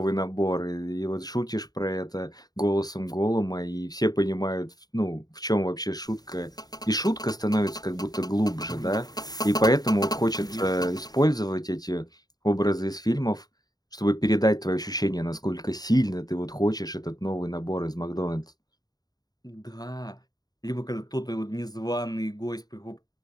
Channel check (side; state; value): right; late; 0.19 ms